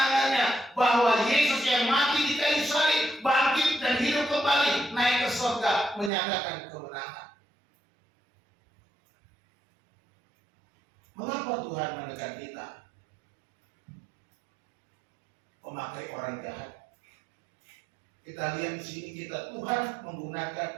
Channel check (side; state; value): left; drops out; at 6.1 s